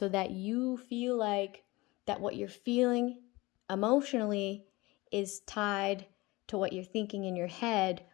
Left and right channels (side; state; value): right; quieter; 21.8 dB